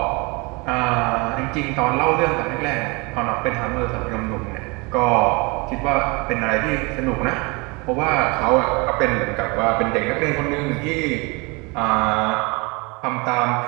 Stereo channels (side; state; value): left; quieter; 28.0 dB